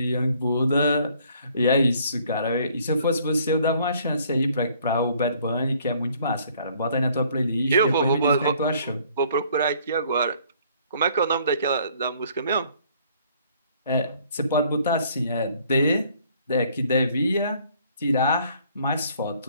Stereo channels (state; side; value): inverted; both; correlation -0.60